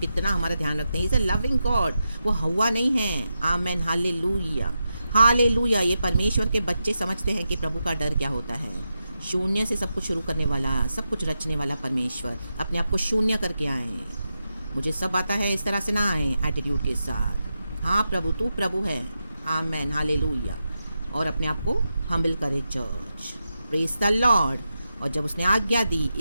हमारा ध्यान रखते हैं। इज़ अ लविंग गॉड, वो हवा नहीं है। आमेन, हालेलुया, हालेलुया। ये परमेश्वर के बच्चे समझते हैं कि प्रभु का डर क्या होता है। शून्य से सब कुछ शुरू करने वाला, सब कुछ रचने वाला परमेश्वर अपने आप को शून्य करके आए। मुझे सब आता है, इस तरह से ना आए एटीट्यूड के साथ। हाँ प्रभु, तू प्रभु है। आमेन, हालेलुया। और अपने आप को हम्बल करे चर्च। Praise the Lord. और जब उसने आज्ञा दी,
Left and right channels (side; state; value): both; inverted; correlation -0.88